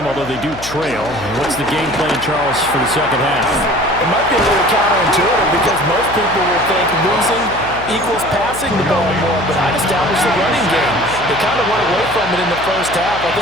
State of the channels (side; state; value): left; noise; hum, 13 dB below the sound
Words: although they do trail. What's the game plan, Charles, for the second half? It might be a little counterintuitive because most people will think losing equals passing the ball more, but I'd establish the running game. They kind of went away from it in the first half. I